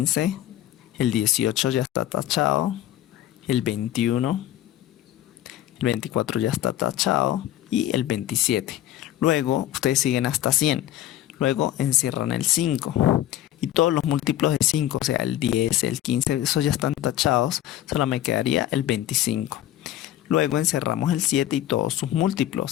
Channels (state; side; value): quieter; right; 12.9 dB